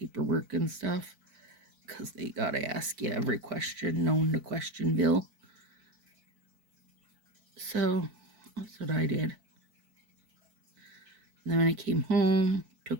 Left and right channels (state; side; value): late; left; 4.6 ms